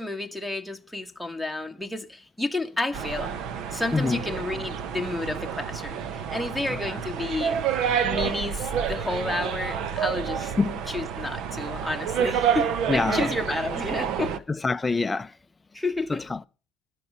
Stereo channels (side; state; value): both; normal; correlation 0.63